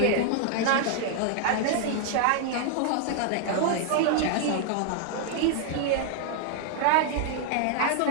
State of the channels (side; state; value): both; different; correlation 0.00